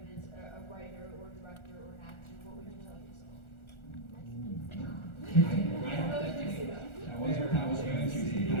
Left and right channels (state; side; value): late; right; 1.4 ms